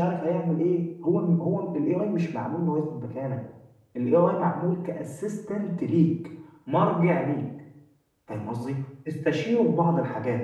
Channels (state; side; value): identical; both; correlation 1.00